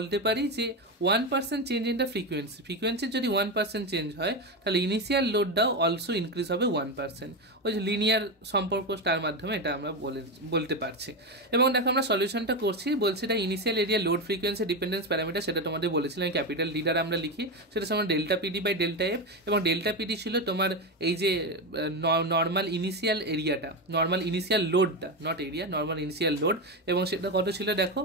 পারি যে 1% চেঞ্জ ইন দ্য ফ্রিকোয়েন্সির যদি 1% চেঞ্জ হয় তাহলে ইনিশিয়াল লোডটাও অলসো ইনক্রিজ হবে 1%, ওই যে লিনিয়ার সম্পর্ক তার মাধ্যমে এটা আমরা বলতে পারছি। এবং দেখো আমরা সলিউশনটা করছি, বলছি এটা initial area load frequency dependence parameter, সেটা তোমাদের বলেছিলাম ক্যাপিটাল ডি দ্বারা আমরা লিখি, সেটা সমান delta PD by delta F, এবং ডেল্টা পিডি ছিল তোমার এই যে নর্মাল ইনিশিয়াল এরিয়াটা, নর্মাল ইনিশিয়াল লোডটা, naught area, normal initial load, এবং সেটা কত ছিল দেখো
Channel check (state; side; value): normal; both; correlation 0.14